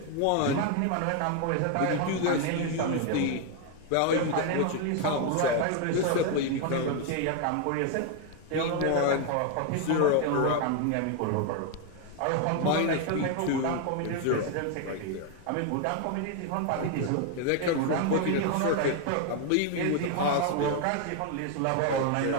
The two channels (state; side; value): different; both; correlation 0.01